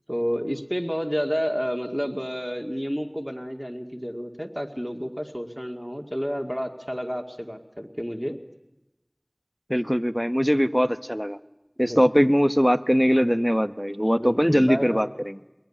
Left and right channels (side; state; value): both; identical; correlation 1.00